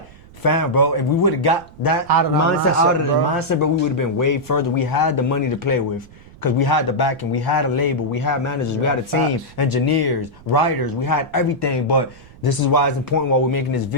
fam, bro, if we would have got that Out of our mindset out of the bro. mindset, bro, we would have been way further. We had the money to play with. Because we had the backing, we had a label, we had managers, we had a team, facts. engineers, writers, we had everything. But this is why it's important while we're making this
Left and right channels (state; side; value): noise; right; rumble, 22 dB below the sound